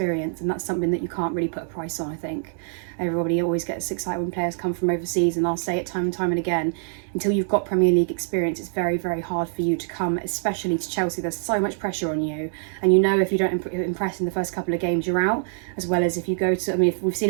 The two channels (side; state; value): left; silent; digital silence